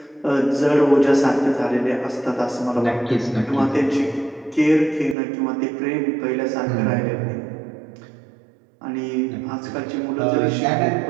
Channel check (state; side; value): drops out; left; at 5.2 s